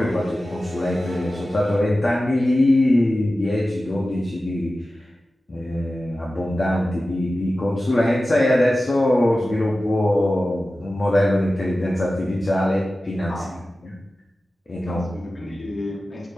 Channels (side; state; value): both; normal; correlation 0.95